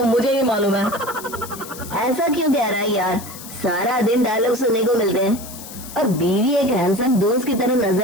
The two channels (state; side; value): noise; left; hiss, 14 dB below the sound